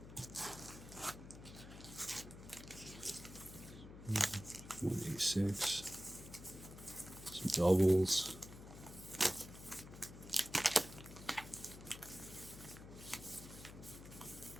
Mm-hmm. 186. Some doubles.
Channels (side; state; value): left; noise; hum, 14 dB below the sound